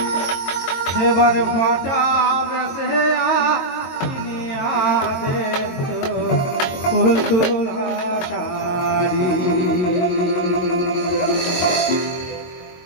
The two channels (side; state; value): right; late; 22 ms